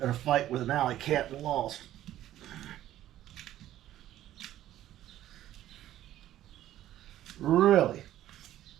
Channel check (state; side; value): quieter; left; 13.1 dB